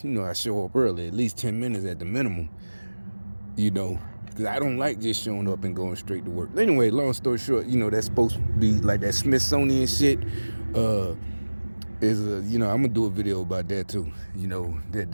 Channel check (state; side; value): inverted; both; correlation -1.00